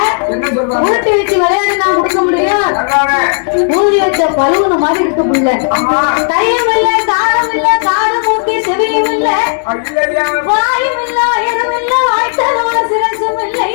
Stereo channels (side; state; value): right; silent; digital silence